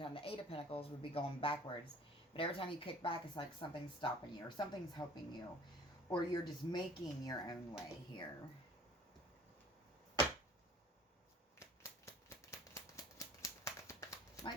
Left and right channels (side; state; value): both; normal; correlation 0.49